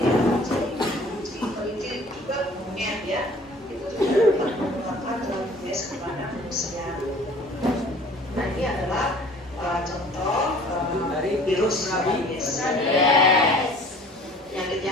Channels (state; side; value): normal; both; correlation 0.50